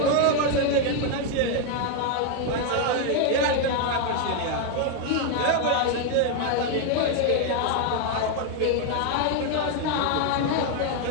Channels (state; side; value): different; both; correlation 0.01